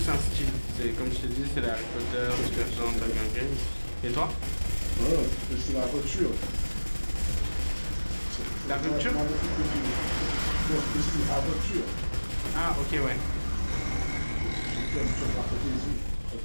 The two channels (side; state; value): both; inverted; correlation -1.00